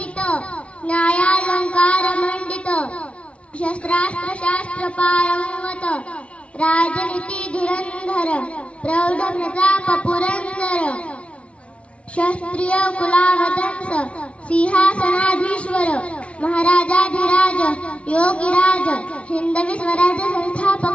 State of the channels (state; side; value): late; right; 0.061 ms